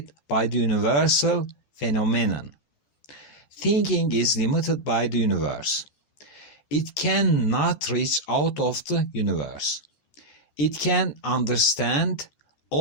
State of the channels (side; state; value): right; late; 13 ms